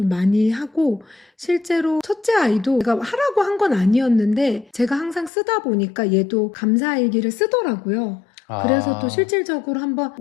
많이 하고 실제로 첫째 아이도 제가 하라고 한 건 아니었는데 제가 항상 쓰다 보니까 얘도 감사일기를 쓰더라고요. 그래서 또 실질적으로 한번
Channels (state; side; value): drops out; right; at 5.3 s